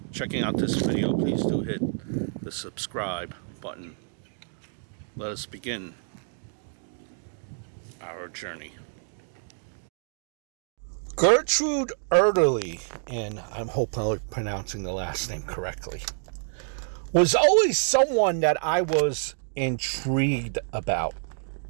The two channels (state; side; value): silent; left; digital silence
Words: checking out this video. Please do hit the subscribe button. Let us begin our journey. Gertrude Ederle, and I'm hopefully pronouncing the last name correctly, was always someone that I was intrigued about.